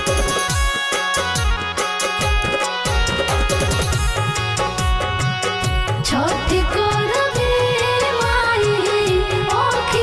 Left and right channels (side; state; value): both; identical; correlation 1.00